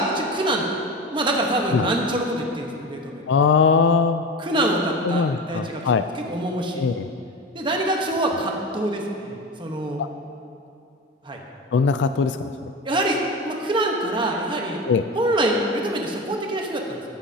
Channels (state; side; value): normal; both; correlation 0.26